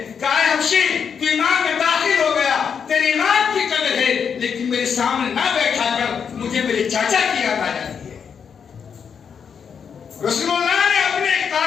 کہا ہے حبشی تو ایمان میں داخل ہو گیا، تیرے ایمان کی قدر ہے، لیکن میرے سامنے نہ بیٹھا کر مجھے میرے چاچا کی یاد آ جاتی ہے۔ رسول اللہ نے اپنے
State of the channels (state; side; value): quieter; right; 6.9 dB